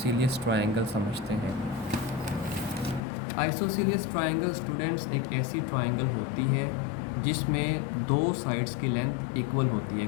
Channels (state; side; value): drops out; right; at 3.0 s